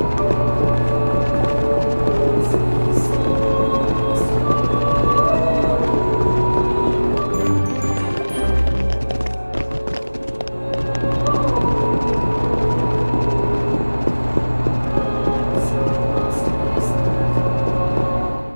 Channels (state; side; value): inverted; both; correlation -1.00